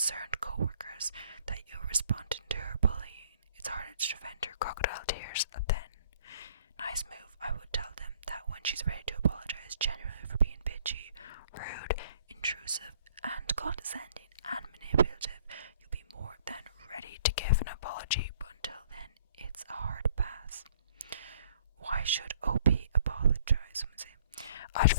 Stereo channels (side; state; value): both; inverted; correlation -0.58